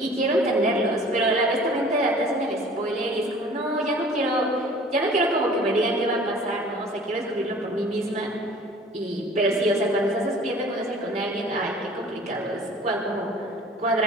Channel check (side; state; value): both; normal; correlation 0.48